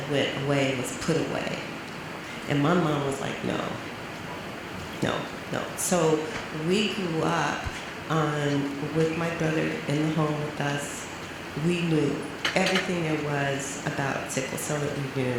went away and was put away. And my mom was like, no. So we grew up with my brother in the home with us. We knew everything there was about sickle cell that we knew.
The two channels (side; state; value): both; identical; correlation 1.00